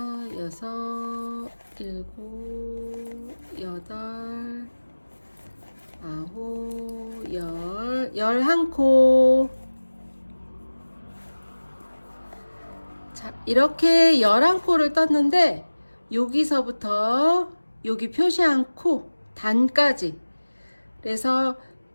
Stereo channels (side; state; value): both; inverted; correlation -1.00